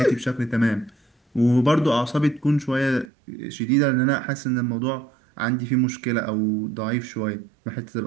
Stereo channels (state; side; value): drops out; left; at 3.1 s